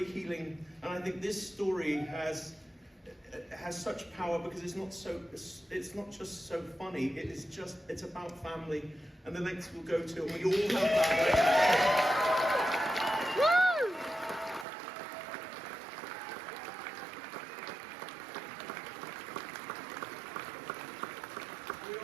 healing, and I think this story has such power because it's not just so funny. It's about family and the lengths we'll go to, and we all have that.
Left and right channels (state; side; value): drops out; left; at 14.7 s